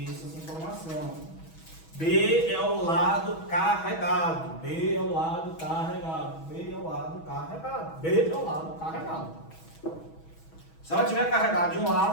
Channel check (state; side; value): late; right; 6.2 ms